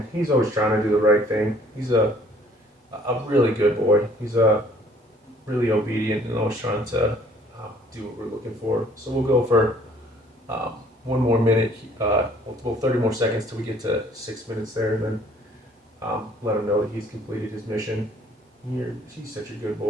He's always trying to do the right thing. He's a really good boy. He's really obedient and always trying to do what we're looking for. So we'll go for 1 more minute, 30 more seconds till we get to 6 minutes there, and then let him know that he's completed his mission. He's such a good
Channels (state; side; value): normal; both; correlation 0.58